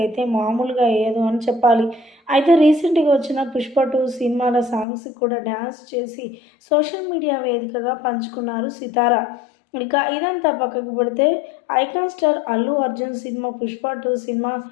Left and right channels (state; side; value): drops out; right; at 4.9 s